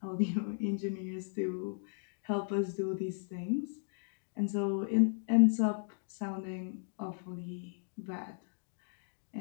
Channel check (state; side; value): silent; right; digital silence